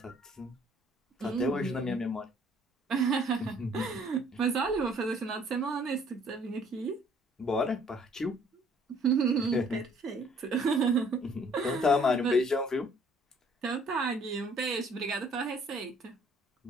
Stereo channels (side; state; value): both; normal; correlation 0.60